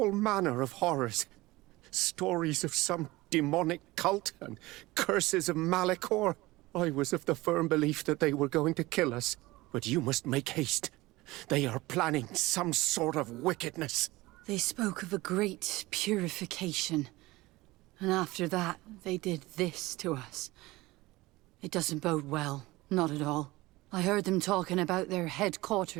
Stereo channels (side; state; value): left; quieter; 20.0 dB